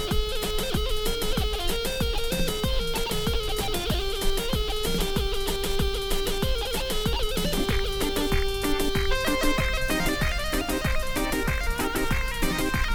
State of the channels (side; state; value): both; identical; correlation 1.00